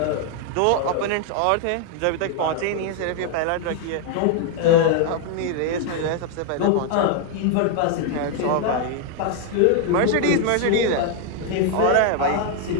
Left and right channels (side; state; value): both; different; correlation 0.00